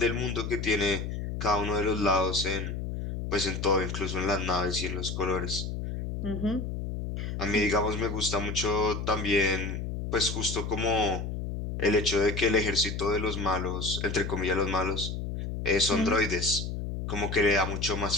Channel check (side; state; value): left; noise; hum, 4 dB below the sound